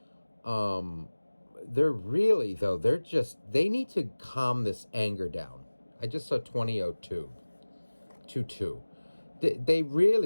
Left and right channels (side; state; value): both; inverted; correlation -1.00